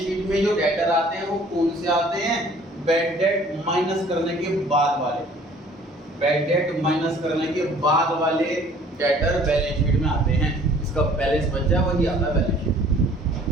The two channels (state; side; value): normal; both; correlation 0.54